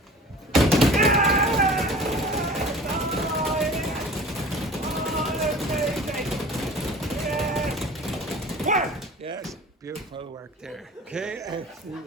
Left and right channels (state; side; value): normal; both; correlation 0.42